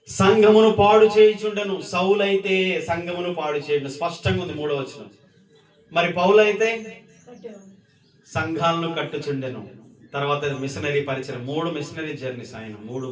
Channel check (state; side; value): identical; both; correlation 1.00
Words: సంఘమును పాడు చేయుచుండెను. సౌలు అయితే సంఘమును పాడు చేయడం స్పష్టంగా ఉంది, 3వ వచనం. మరి పౌలు అయితే సంఘాలను కట్టుచుండెను. తర్వాత మిషనరీ పరిచయం, 3 మిషనరీ జర్నీస్, ఆయన 3